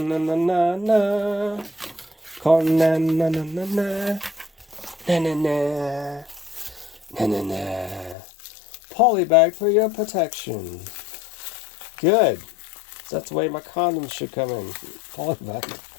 na, na, na. Conan. Na, na, na, na. Na, na, na. Na, na, na. Polybag for your protection. Good. That's the way my condoms should come in. Polybag.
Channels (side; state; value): right; drops out; at 8.2 s